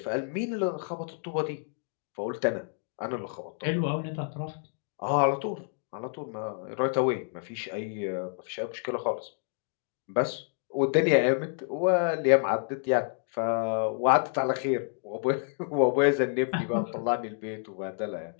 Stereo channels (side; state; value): right; silent; 58 dB below the other